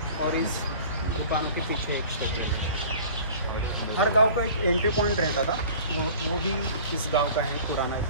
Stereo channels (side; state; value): both; inverted; correlation -0.44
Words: और इस दुकानों के पीछे एक स्टेप वेल है. हर गांव का एक एंट्री पॉइंट रहता था, वो भी इस गांव का है, पुराना,